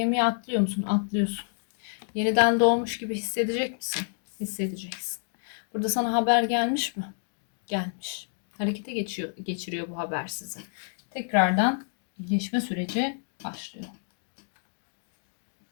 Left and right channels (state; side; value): silent; right; 59 dB below the other